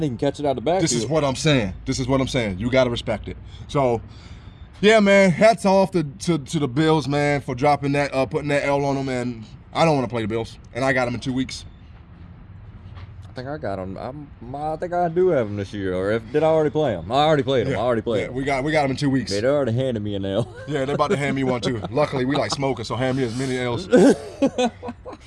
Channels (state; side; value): identical; both; correlation 1.00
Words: he can catch it out the backfield. This is what I'm saying. You got to respect it. So, yeah, man, hats off to the Bills, man, for dropping that, putting that L on them. And I don't want to play the Bills, and I got them in 2 weeks. I think I got him. I think I do have him this year. Or did I already play him? I already played him. We got them in 2 weeks. They already handed me an L. Yeah, they're about to hand me one too. Luckily, we like smoking, so hand me as many L's.